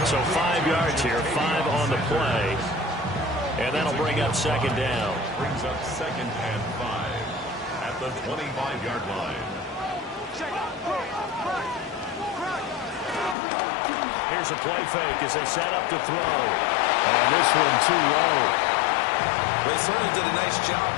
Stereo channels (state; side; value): drops out; right; at 13.4 s